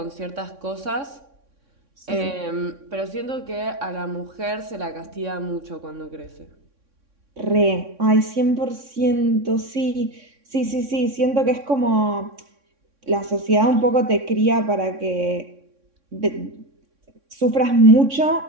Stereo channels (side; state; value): left; late; 3.6 ms